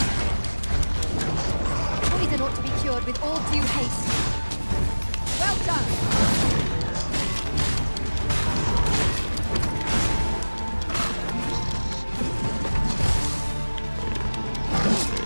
Poison ought to be cured with all due haste. Well done!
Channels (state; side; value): inverted; both; correlation -1.00